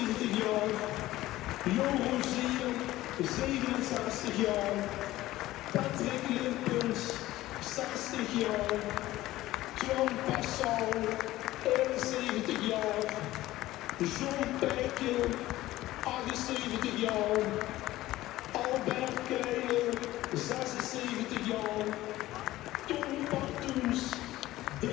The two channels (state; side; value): quieter; right; 16.2 dB